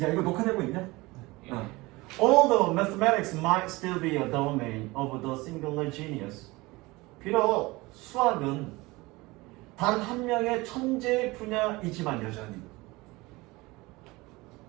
야, 이거 녹화되고 있냐? 예. All the mathematics might still be a domain of the singular genius. 비록 수학은 단 한 명의 천재 분야이지만 여전히.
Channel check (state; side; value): quieter; left; 22.1 dB